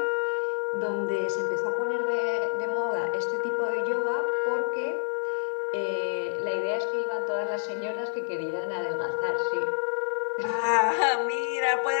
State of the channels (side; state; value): right; silent; digital silence